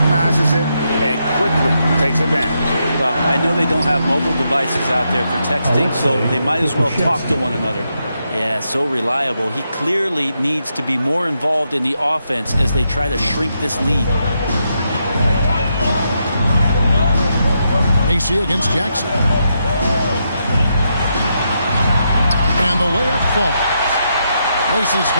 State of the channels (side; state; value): both; inverted; correlation -0.81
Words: it and quickly takes advantage. Well, I know they don't have mobile devices out there for texting, so they might as well talk to one another. Yeah, so reliable. He clearly needs to be more involved in the offense as they try to shrink this lead. Macy against Jackson. And the layup falls. Macy's